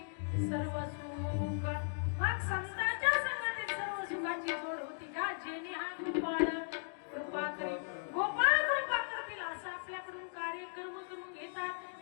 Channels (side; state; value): right; silent; digital silence